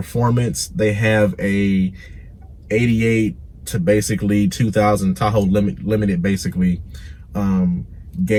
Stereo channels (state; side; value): identical; both; correlation 1.00